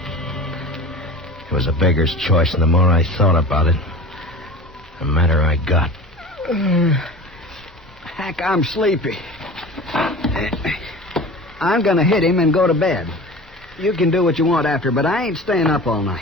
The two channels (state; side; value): normal; both; correlation 0.37